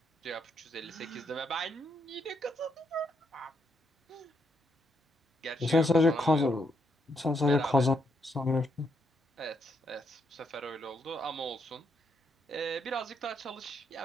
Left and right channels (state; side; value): normal; both; correlation 0.77